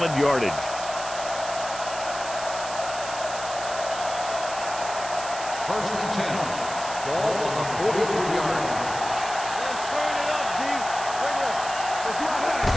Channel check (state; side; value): noise; right; hiss, 10 dB below the sound